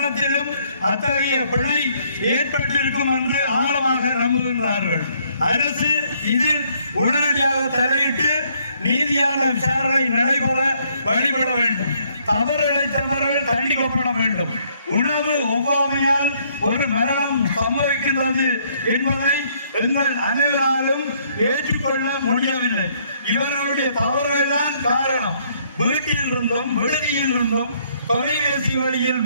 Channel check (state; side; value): inverted; both; correlation -0.67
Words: அத்தகைய பிழை ஏற்பட்டிருக்கும் என்று ஆழமாக நம்புகின்றார்கள். அரசு இதில் உடனடியாக தலையிட்டு நீதியான விசாரணை நடைபெற வழிபட வேண்டும். தவறு இழைத்தவர்கள் தண்டிக்கப்பட வேண்டும். உணவு ஒவ்வாமையால் ஒரு மரணம் சம்பவிக்கின்றது என்பதை எங்கள் அனைவராலும் ஏற்றுக்கொள்ள முடியவில்லை. இவர்களுடைய தவறுகள் தான் காரணம். வீட்டில் இருந்தும் விடுதியில் இருந்தும் தொலைபேசி வழியில்